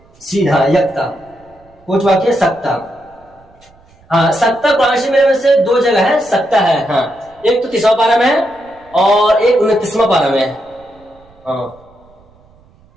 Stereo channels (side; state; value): right; noise; rumble, 30 dB below the sound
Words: سیدھا یکتا کچھ باقی ہے، سکتا۔ ہاں سکتا قرآن شریف میں سے دو جگہ ہے سکتا ہے، ہاں ایک تو 30واں پارہ میں ہے اور ایک 29واں پارہ میں ہے، ہاں